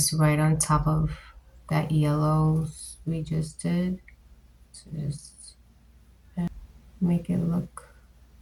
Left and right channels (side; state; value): both; identical; correlation 1.00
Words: right on top of that yellow we just did. So just make it look